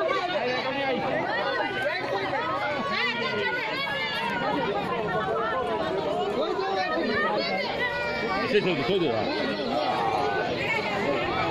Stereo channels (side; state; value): both; identical; correlation 1.00